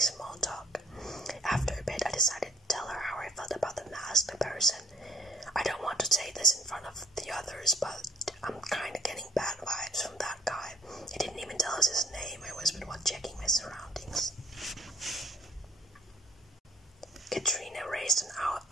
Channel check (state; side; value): normal; both; correlation 0.57